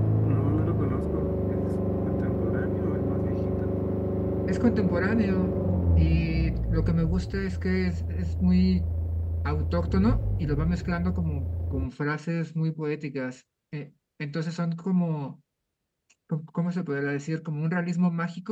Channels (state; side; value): identical; both; correlation 1.00